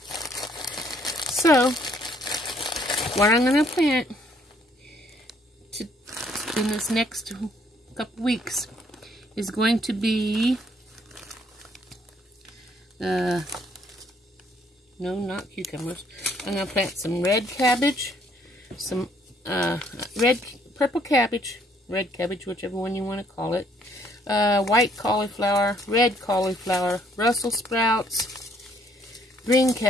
So, what I'm going to plant in this next couple weeks is going to be, no, not cucumbers. I'm going to plant some red cabbage, some purple cabbage, red cabbage, whichever one you want to call it, white cauliflower, red cauliflower, Brussels sprouts, green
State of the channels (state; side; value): normal; both; correlation 0.65